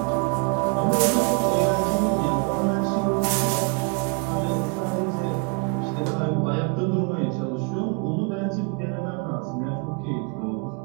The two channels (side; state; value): left; quieter; 34.0 dB